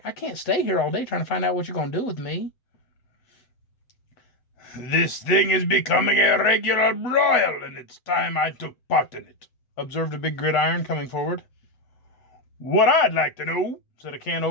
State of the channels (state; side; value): late; right; 8.0 ms